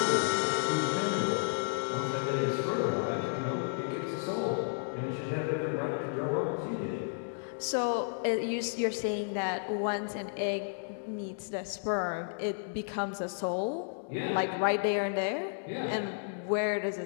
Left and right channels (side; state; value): right; silent; digital silence